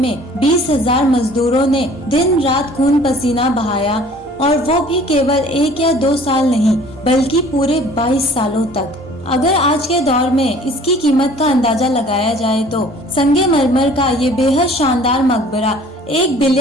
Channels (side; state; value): both; normal; correlation 0.51